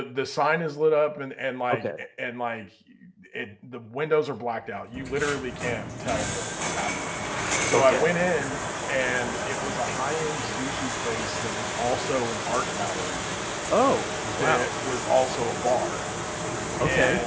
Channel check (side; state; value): both; identical; correlation 1.00